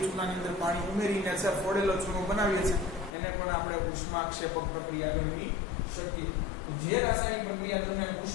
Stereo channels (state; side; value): drops out; right; at 3.1 s